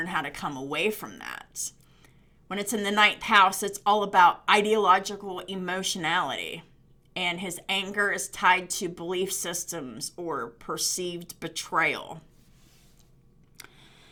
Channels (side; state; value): both; identical; correlation 1.00